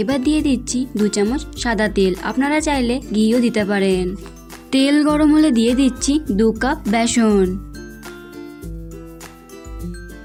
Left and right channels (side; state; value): both; identical; correlation 1.00